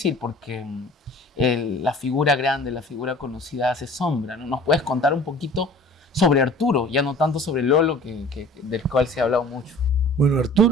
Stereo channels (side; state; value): both; normal; correlation 0.47